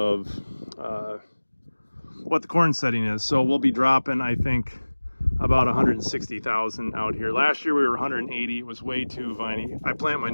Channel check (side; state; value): both; inverted; correlation -1.00